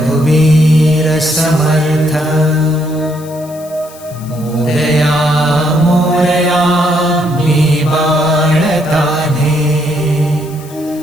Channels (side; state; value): left; noise; hiss, 21 dB below the sound